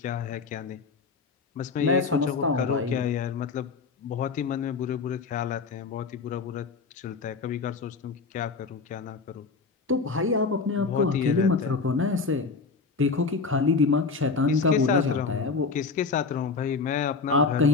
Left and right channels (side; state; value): right; quieter; 4.6 dB